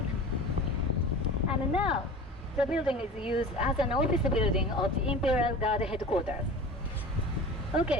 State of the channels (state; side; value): normal; both; correlation 0.38